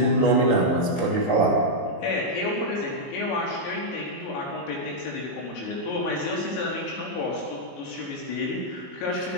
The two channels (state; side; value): late; right; 23 ms